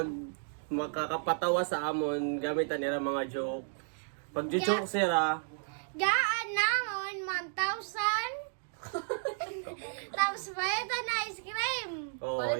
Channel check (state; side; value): silent; left; digital silence